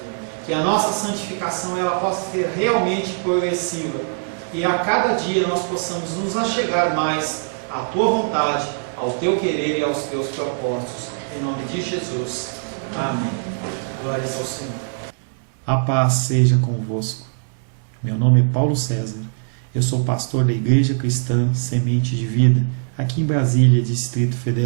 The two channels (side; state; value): left; silent; digital silence